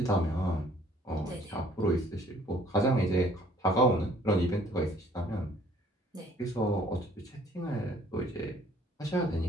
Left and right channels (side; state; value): both; normal; correlation 0.57